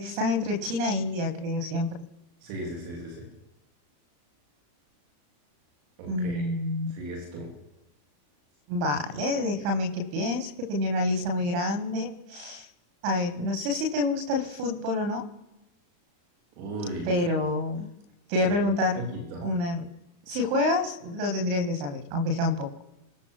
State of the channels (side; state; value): left; late; 35 ms